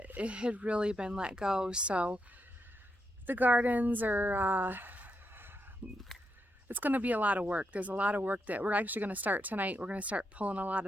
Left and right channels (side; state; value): both; normal; correlation 0.82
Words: it had really been let go. So the gardens are, it's going to be a lot of work. There's a lot of work that we're actually going to start tonight. We're going to start pulling a lot